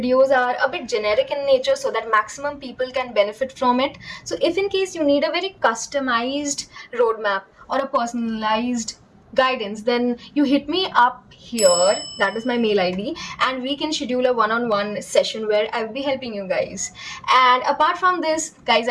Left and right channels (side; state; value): both; identical; correlation 1.00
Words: are a bit generic in nature so that maximum people can benefit from it. So if in case you need a very customized roadmap or a personalized guidance, then you hit me up here, that is my mail ID, and we can schedule a one-on-one session where I'll be helping you guys. And apart from this, guys,